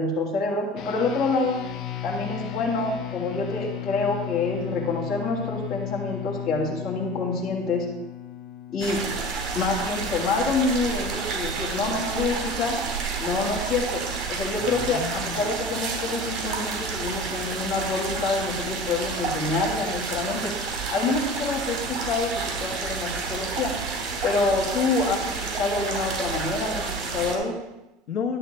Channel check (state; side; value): normal; both; correlation 0.38